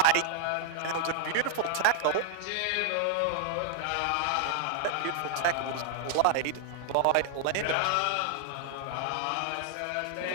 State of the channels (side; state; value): both; different; correlation 0.00